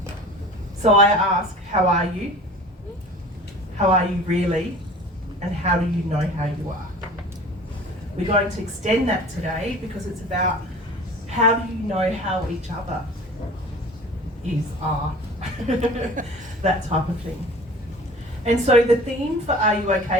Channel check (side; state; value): both; normal; correlation 0.42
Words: So I ask, how are you? How are you really? And how do you know how you are? We're going to extend that today because it's about how do you know how each other are, that type of thing. And so the theme for Are You